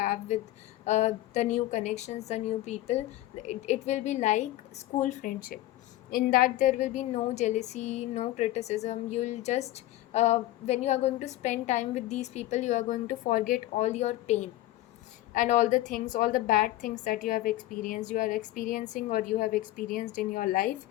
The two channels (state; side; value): quieter; right; 15.7 dB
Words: with the new connections, the new people, it will be like school friendship, in that there will be no jealousy, no criticism. You'll just when you are going to spend time with these people, you are going to forget all your pain and all the things, all the bad things that you have experienced, you are experiencing, or you have experienced in your life.